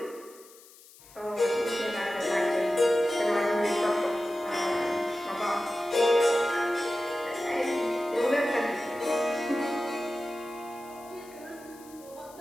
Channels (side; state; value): left; noise; hiss, 23 dB below the sound